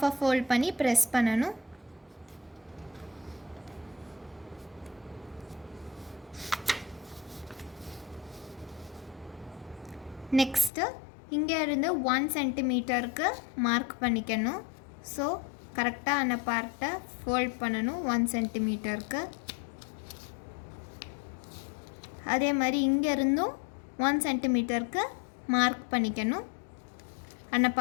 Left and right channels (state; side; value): drops out; right; at 10.7 s